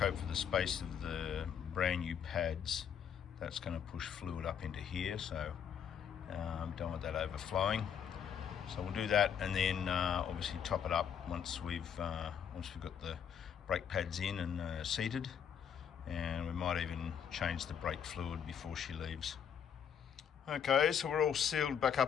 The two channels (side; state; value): right; quieter; 8.2 dB